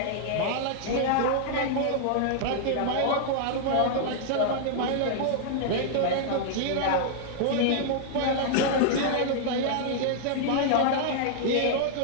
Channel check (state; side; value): different; both; correlation -0.01